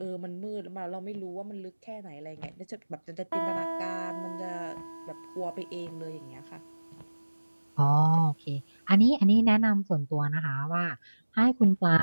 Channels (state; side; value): inverted; both; correlation -1.00